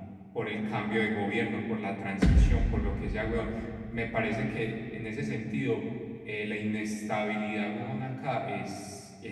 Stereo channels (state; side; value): identical; both; correlation 1.00